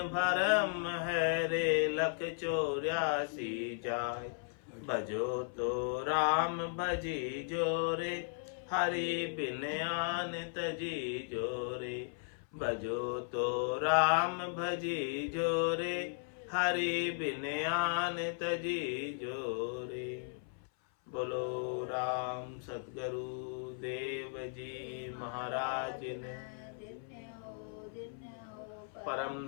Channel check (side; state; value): right; silent; 54 dB below the other